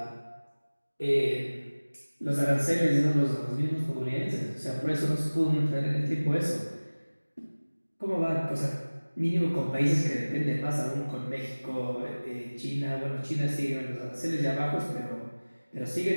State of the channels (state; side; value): inverted; both; correlation -1.00